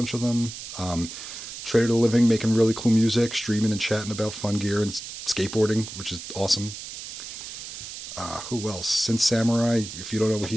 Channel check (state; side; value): noise; right; hiss, 10 dB below the sound